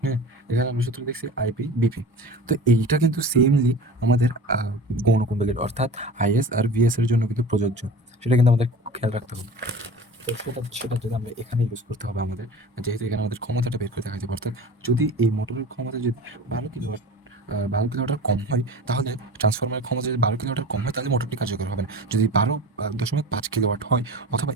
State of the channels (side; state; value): both; normal; correlation 0.36